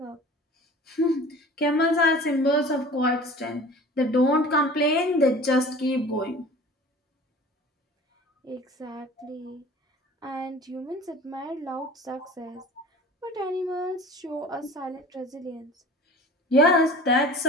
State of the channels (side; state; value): both; normal; correlation 0.43